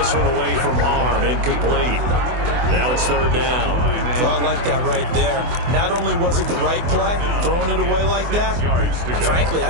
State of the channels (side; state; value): left; late; 24 ms